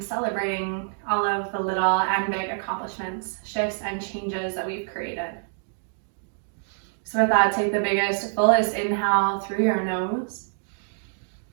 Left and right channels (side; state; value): left; silent; 61 dB below the other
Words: celebrating all of the little and big accomplishments, shifts, and changes that we've created. So with that, take the biggest, fullest inhale through your nose.